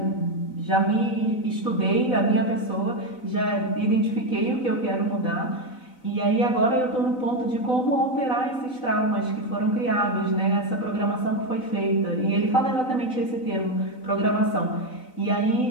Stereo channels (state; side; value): late; right; 4.0 ms